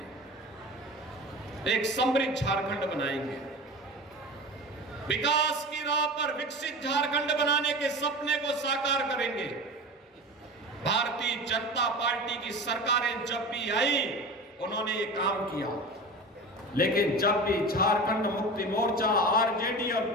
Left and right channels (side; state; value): both; normal; correlation 0.31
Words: एक समृद्ध झारखंड बनाएंगे, विकास की राह पर विकसित झारखंड बनाने के सपने को साकार करेंगे। भारतीय जनता पार्टी की सरकारें जब भी आई उन्होंने ये काम किया, लेकिन जब भी झारखंड मुक्ति मोर्चा, आरजेडी और